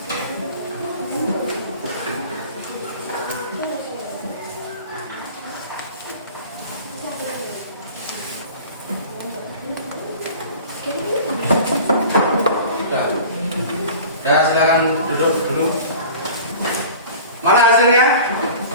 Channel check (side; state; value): both; inverted; correlation -0.40